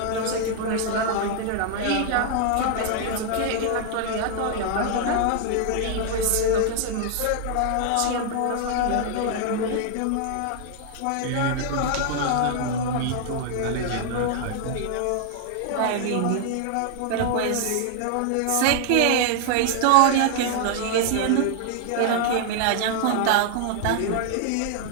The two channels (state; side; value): different; both; correlation 0.00